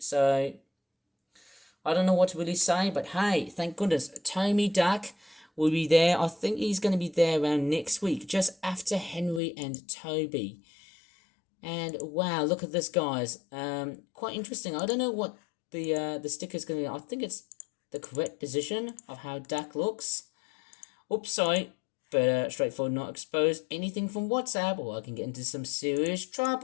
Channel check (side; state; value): right; drops out; at 9.4 s